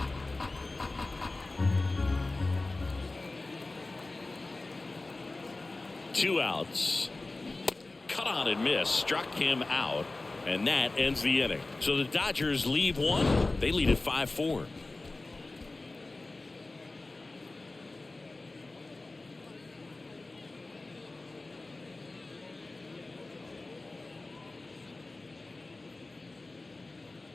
Two outs. Cut on and miss. Struck him out. And that ends the inning. So the Dodgers leave one. They lead at 5-4.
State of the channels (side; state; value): right; quieter; 3.2 dB